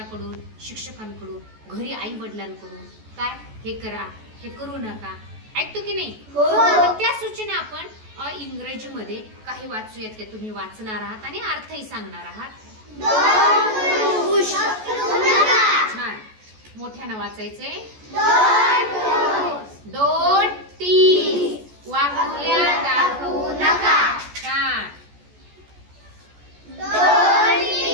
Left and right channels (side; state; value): left; late; 14 ms